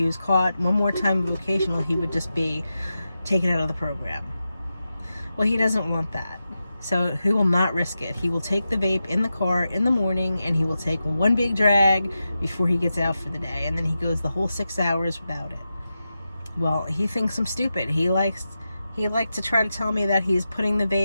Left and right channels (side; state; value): both; inverted; correlation -0.90